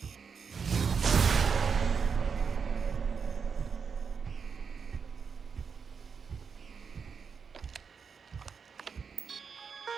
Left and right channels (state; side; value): quieter; left; 6.0 dB